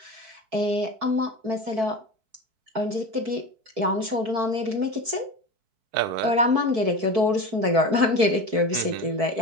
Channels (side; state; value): left; late; 4.6 ms